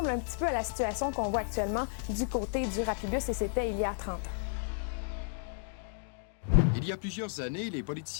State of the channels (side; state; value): right; silent; digital silence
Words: un petit peu à la situation qu'on voit actuellement du côté du Rapibus, et c'était il y a 30 ans. Il y a plusieurs années, les